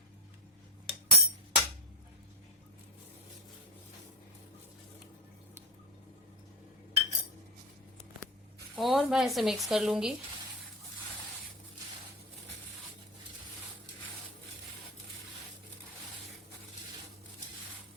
और मैं इसे मिक्स कर लूंगी।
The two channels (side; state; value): both; normal; correlation 0.17